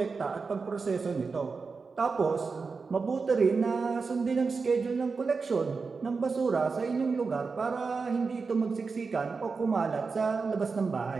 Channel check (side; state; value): left; quieter; 4.7 dB